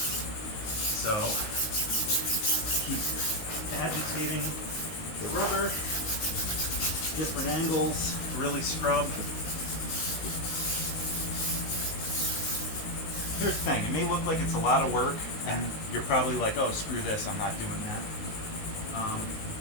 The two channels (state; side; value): late; right; 19 ms